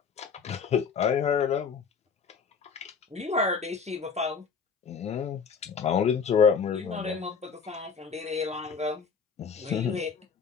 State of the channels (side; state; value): right; quieter; 5.9 dB